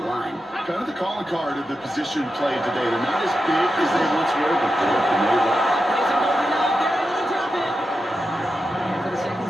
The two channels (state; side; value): normal; both; correlation 0.89